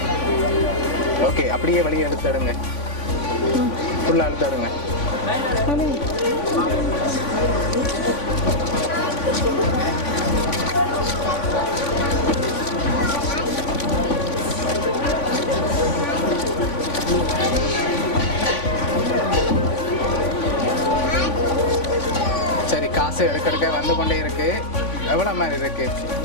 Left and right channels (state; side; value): late; right; 3.5 ms